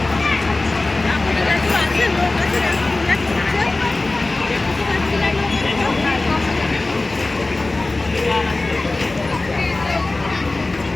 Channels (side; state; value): right; quieter; 3.1 dB